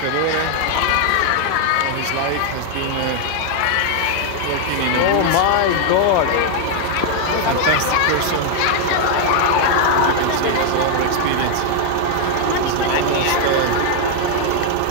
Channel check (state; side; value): different; both; correlation 0.00